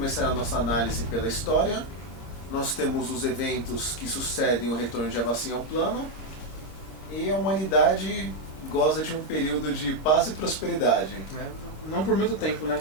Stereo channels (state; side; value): late; right; 26 ms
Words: a nossa análise pela história. Nós temos os eventos que sucedem o retorno de Avacyn ao plano. E a humanidade goza de um período de paz e prosperidade. Não por muito tempo, né?